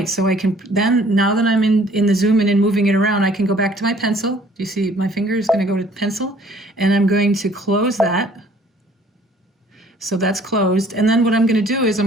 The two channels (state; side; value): normal; both; correlation 0.57